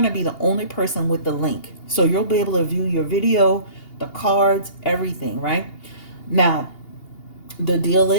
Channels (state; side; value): late; right; 2.8 ms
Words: to be the only person with the link. So you'll be able to view your video, the cards, everything, right? Now, the deal